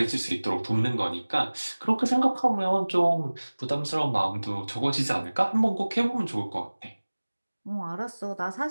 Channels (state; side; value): inverted; both; correlation -1.00